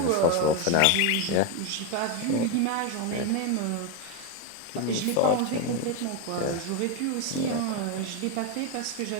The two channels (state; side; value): different; both; correlation 0.02